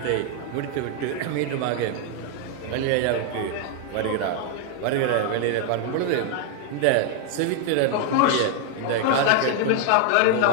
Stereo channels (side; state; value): both; different; correlation 0.00